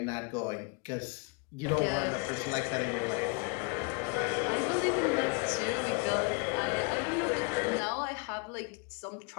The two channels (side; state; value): right; quieter; 34.1 dB